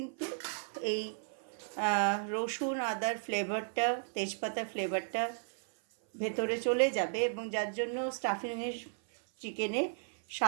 এই রসুন আদার ফ্লেভারটা, তেজপাতার ফ্লেভারটা ভেতরে চলে যাবে, এবং যার জন্য স্টাফিংয়ের চিকেনের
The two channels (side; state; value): left; silent; 55 dB below the other